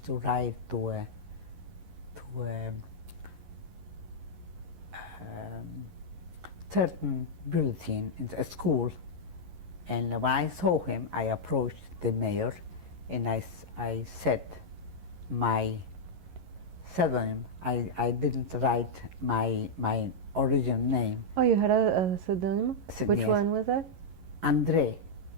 to write to a certain bulletin in a school, and when I saw him, I approached the mayor, and I said my pseudonym. I didn't write my original name. Oh, you had a pseudonym? Which Yes. one was that? Andre.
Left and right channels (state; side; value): late; left; 11 ms